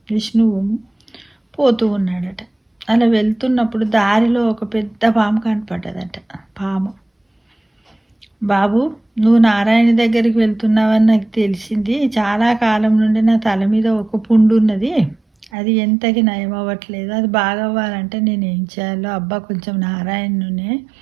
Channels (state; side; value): drops out; left; at 15.5 s